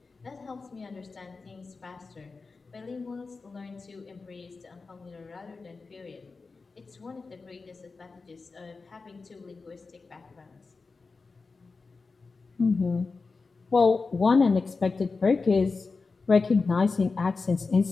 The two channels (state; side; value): quieter; right; 4.2 dB